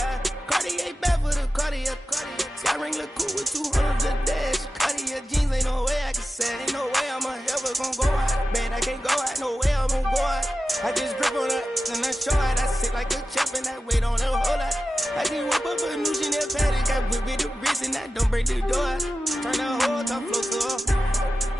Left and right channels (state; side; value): normal; both; correlation 0.94